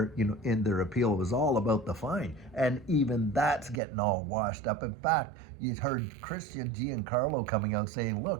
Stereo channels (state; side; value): drops out; left; at 3.8 s